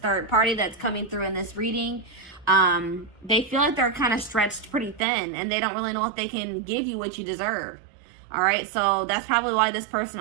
party that's coming through in this reading. They feel like they're kind of stretched pretty thin, and they don't really know if they can give you what you deserve. All right, so that's probably why this person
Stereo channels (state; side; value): drops out; left; at 5.0 s